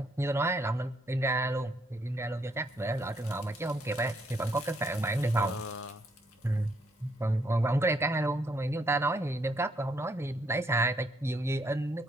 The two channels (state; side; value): normal; both; correlation 0.72